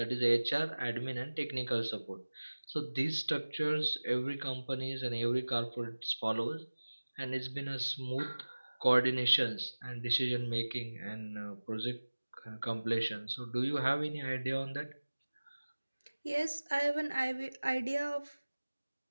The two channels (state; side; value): inverted; both; correlation -1.00